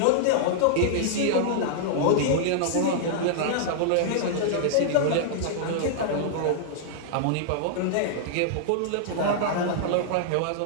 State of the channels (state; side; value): different; both; correlation -0.01